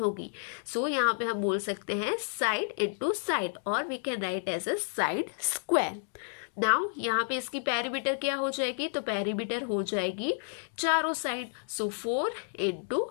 सो यहाँ पे हम बोल सकते हैं साइड इंटू साइड, और we can write as a side square. Now यहाँ पे इसकी पेरीमीटर क्या हो जाएगी? तो पेरीमीटर हो जाएगी चारों side, so 4 into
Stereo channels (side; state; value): right; silent; digital silence